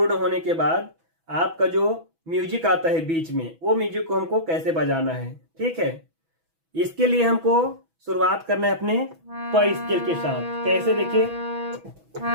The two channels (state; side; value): late; left; 6.1 ms